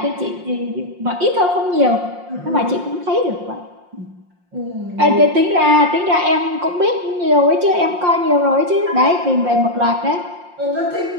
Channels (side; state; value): left; late; 5.6 ms